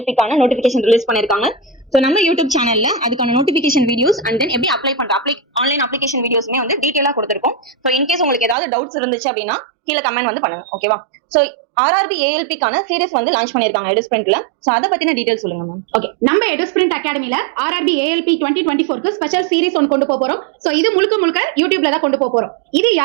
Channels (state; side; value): drops out; left; at 8.6 s